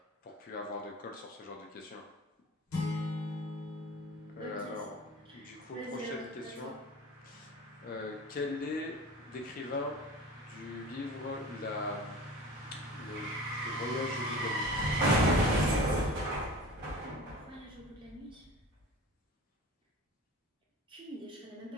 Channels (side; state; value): both; normal; correlation 0.38